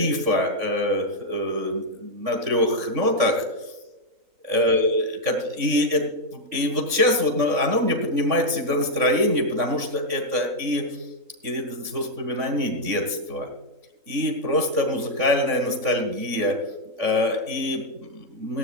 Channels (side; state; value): left; late; 3.6 ms